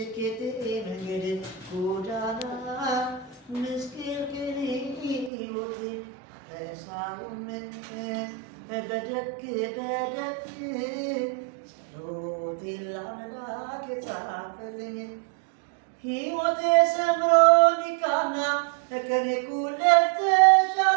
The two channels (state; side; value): drops out; left; at 5.3 s